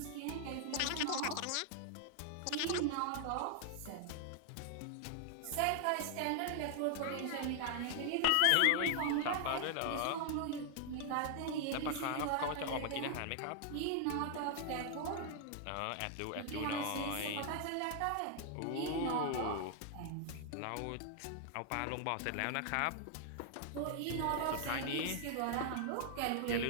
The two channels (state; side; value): different; both; correlation 0.00